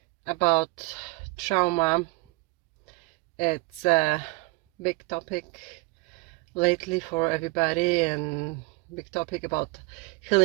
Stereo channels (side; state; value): left; quieter; 24.7 dB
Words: about trauma. It's a big topic lately for everybody, and big topic about